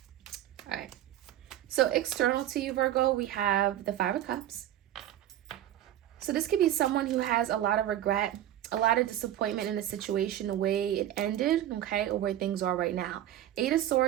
All right. So external to you, Virgo, we have the 5 of Cups. So this could be someone who has a lot of regret, a lot of disappointment in the situation, the way it ended, okay, or where things are right now. 8 of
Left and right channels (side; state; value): left; quieter; 12.2 dB